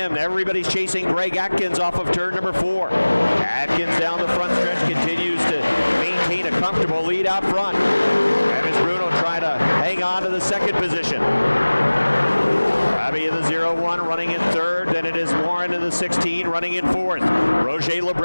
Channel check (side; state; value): both; inverted; correlation -1.00